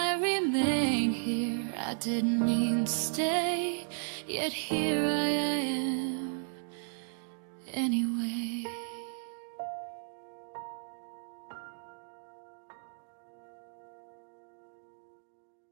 remain here. I didn't mean to stay, yet here I am anyway.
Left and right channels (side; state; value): left; silent; digital silence